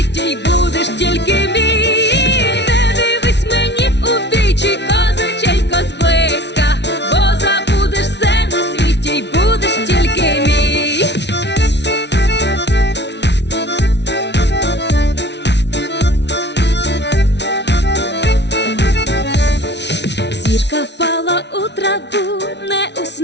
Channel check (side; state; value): right; late; 0.50 ms